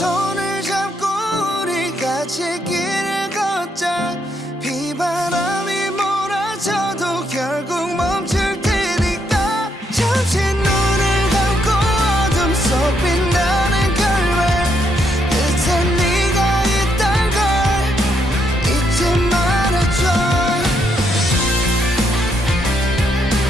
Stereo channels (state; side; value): normal; both; correlation 0.76